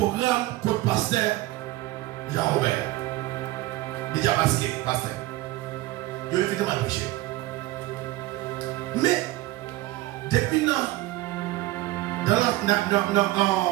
comme pasteur Jean-Robert. Il dit à pasteur. Je vais mal prêcher. Mais, depuis non,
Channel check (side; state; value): left; quieter; 17.7 dB